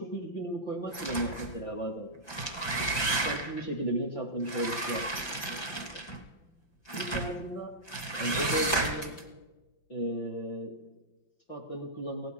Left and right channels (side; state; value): right; late; 5.9 ms